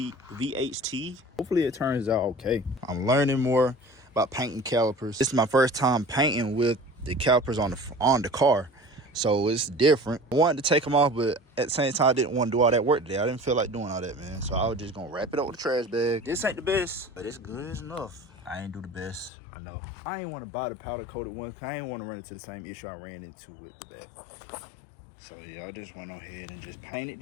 Hopefully it turns out okay. I'm learning more about painting calipers. This is my first time painting with the calipers on the car, so it's different. I wanted to take them off, but at the same time I didn't want to do all that work today. I didn't feel like doing all that, man, so I was just gonna wrap it up with a trash bag. This ain't the best, but it's good enough. I ain't do the best, I know. I ain't want to buy the powder coated one because I ain't want to run into the same issue I ran into with the back. So yeah, I just went on ahead and just painted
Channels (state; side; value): drops out; right; at 19.3 s